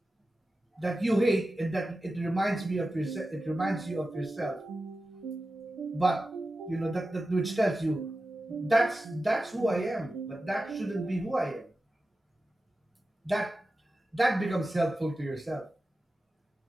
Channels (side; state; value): both; normal; correlation 0.93